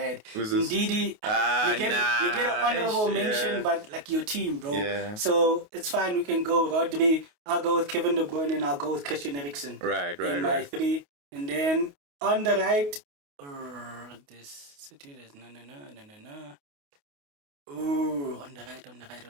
Ndidi, you get an honorable mention, but like your team, bro. So it's fine. We can go Rodri. I'll go with Kevin De Bruyne, and I'll go with Christian Eriksen. Right. My 3, and then on the right, this city is no. Ooh, on the right.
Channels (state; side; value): late; left; 28 ms